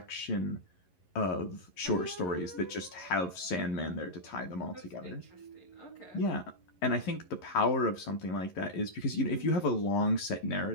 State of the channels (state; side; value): late; right; 11 ms